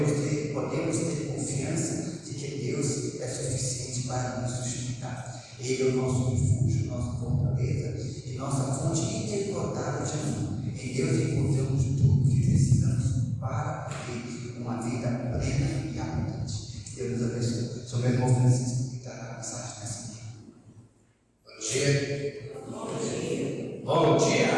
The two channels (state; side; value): identical; both; correlation 1.00